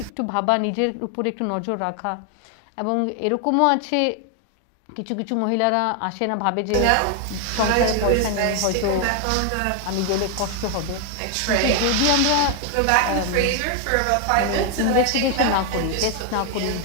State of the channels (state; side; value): different; both; correlation 0.00